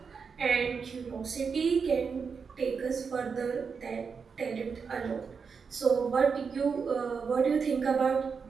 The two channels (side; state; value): left; quieter; 5.7 dB